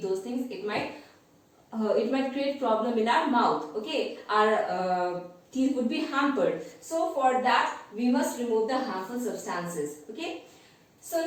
those things, it might create problem in our mouth. Okay, our teeth would be hampered. So for that we must remove the harmful substances. Okay. So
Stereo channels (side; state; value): both; identical; correlation 1.00